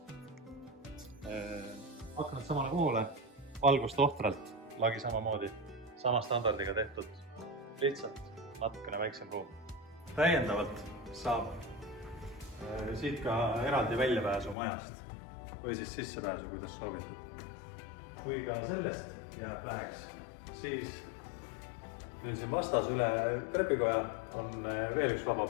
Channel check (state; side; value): drops out; right; at 14.6 s